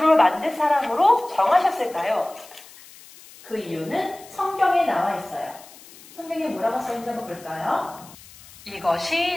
만든 사람으로 정하셨을까요? 그 이유는 성경에 나와 있어요. 성경에 뭐라고 써있는지 한번 볼까요?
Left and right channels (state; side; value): noise; left; hiss, 21 dB below the sound